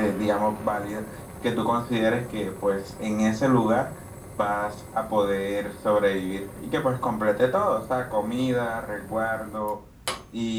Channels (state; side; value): identical; both; correlation 1.00